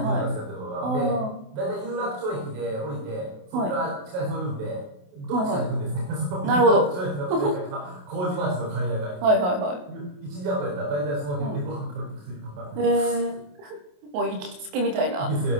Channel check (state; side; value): late; left; 28 ms